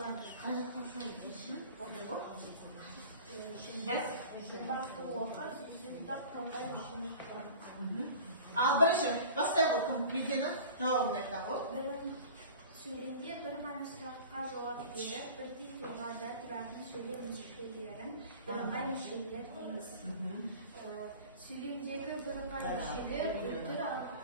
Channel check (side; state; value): both; inverted; correlation -0.40